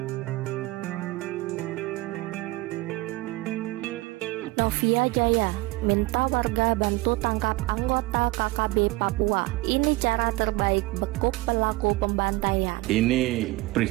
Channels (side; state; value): left; quieter; 20.9 dB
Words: Jaya minta warga bantu tangkap anggota KKB Papua. Ini cara terbaik bekuk pelaku pembantaian. Ini